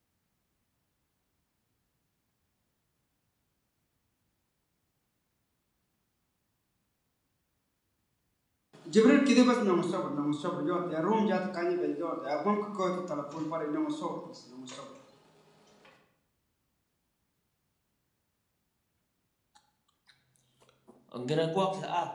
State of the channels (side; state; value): both; identical; correlation 1.00